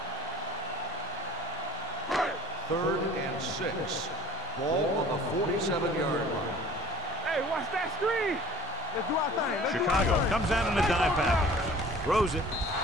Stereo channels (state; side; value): normal; both; correlation 0.47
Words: Third and 6. Ball on the 47-yard line. Hey, watch that screen. Let's do our thing. Chicago comes out in a dive package. Throws it.